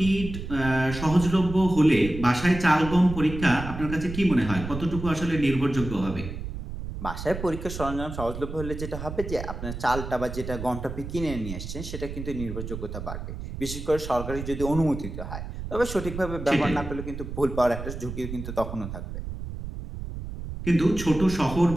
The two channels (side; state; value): right; noise; rumble, 8 dB below the sound